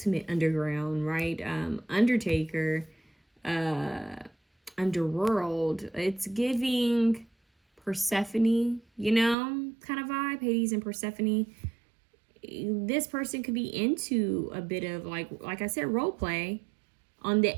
underground, right? Undertaker, underworld. It's giving Persephone, kind of vibe. Hades and Persephone. This person could be into a bit of like I said, role play on the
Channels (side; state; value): left; drops out; at 9.3 s